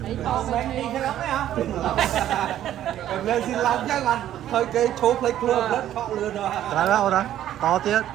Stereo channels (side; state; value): left; quieter; 11.9 dB